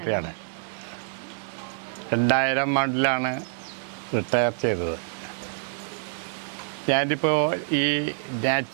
2000 ആണ്ടിലാണ് റിട്ടയർ ചെയ്തത്. ഞാനിപ്പോൾ ഈ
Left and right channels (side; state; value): left; silent; 60 dB below the other